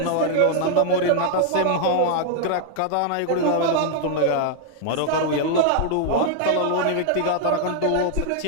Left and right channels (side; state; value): both; different; correlation -0.01